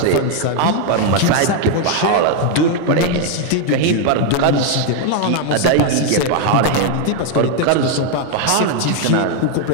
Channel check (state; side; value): different; both; correlation 0.01